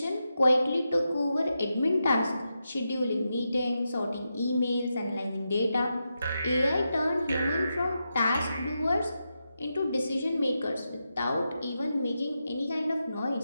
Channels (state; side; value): inverted; both; correlation -0.87